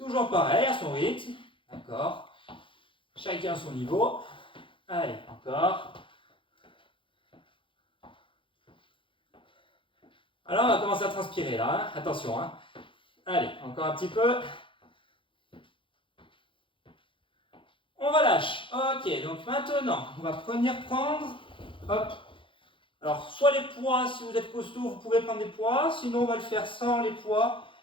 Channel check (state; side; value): late; right; 0.25 ms